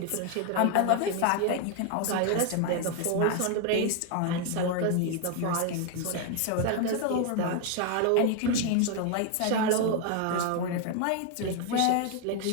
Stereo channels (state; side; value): different; both; correlation 0.01